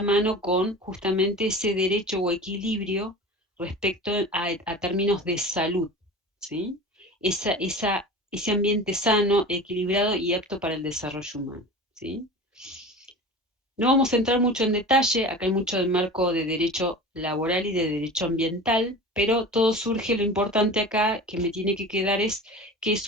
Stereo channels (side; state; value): both; normal; correlation 0.35